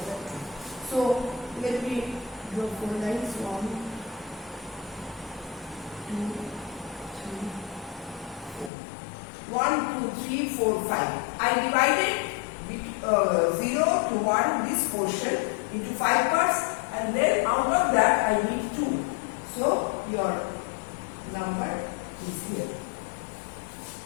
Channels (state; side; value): drops out; right; at 8.7 s